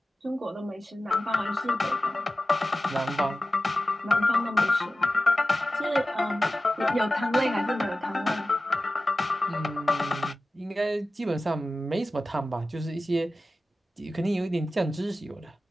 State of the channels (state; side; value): normal; both; correlation 0.95